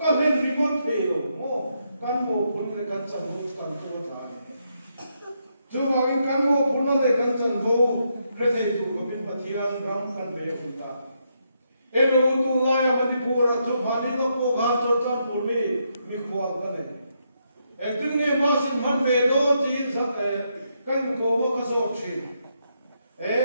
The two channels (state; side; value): inverted; both; correlation -0.79